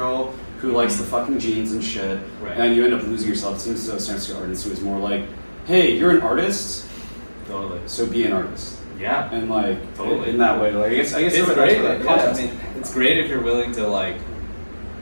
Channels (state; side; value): inverted; both; correlation -1.00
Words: who likes the fucking jeans and shit. Right. And you end up losing yourself. It seems as though San Artist was more like, hey, you're an artist, Totally. so be an artist. Yeah. And like Totally. in that way, like I guess It's that's great. where that Yeah, context I mean, came from. it's great if you're willing to like